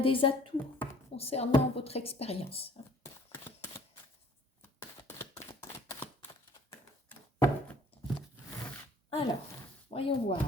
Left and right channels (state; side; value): normal; both; correlation 0.54